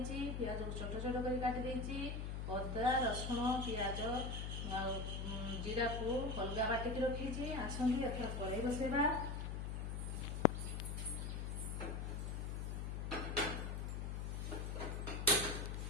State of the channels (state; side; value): noise; left; hum, 3 dB below the sound